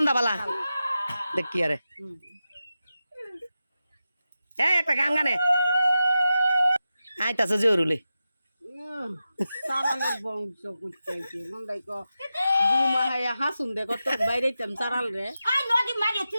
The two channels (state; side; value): inverted; both; correlation -0.91